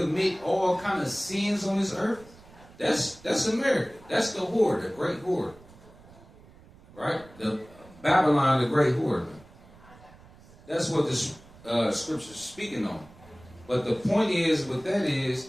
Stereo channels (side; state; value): right; noise; rumble, 23 dB below the sound